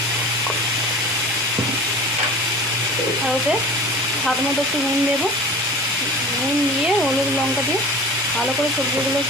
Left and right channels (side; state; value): both; normal; correlation 0.37